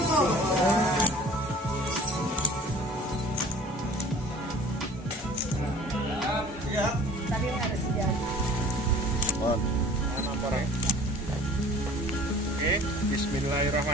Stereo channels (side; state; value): both; normal; correlation 0.47